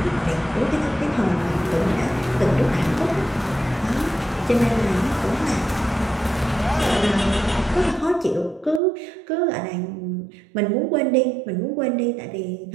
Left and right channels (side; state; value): left; drops out; at 8.8 s